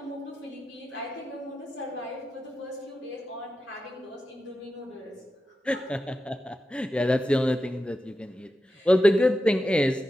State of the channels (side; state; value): both; normal; correlation 0.90